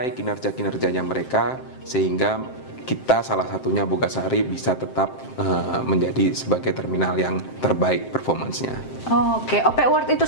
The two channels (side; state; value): right; late; 7.6 ms